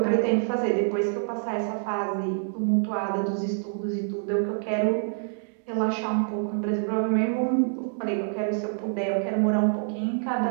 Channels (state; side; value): silent; left; digital silence